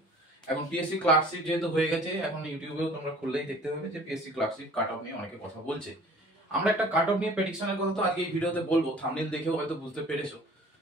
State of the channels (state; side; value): normal; both; correlation 0.49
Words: এখন পিএসসি ক্লার্কশিপ যেহেতু হয়ে গেছে, এখন ইউটিউবেও তোমরা খুললেই দেখতে পাবে যে পিএসসি ক্লার্কশিপ কাট অফ নিয়ে অনেকে কথা বলছে। আমরা একটা কাট অফ নিয়ে প্রেডিকশনের কথা তো আজকে এই ভিডিওতে বলবো, থাম্বনেল দেখেও হয়তো বুঝতে পেরেছো।